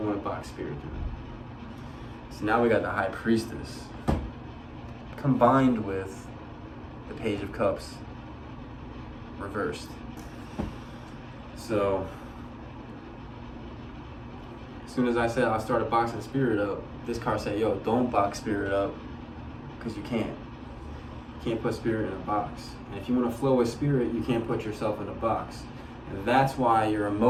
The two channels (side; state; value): both; identical; correlation 1.00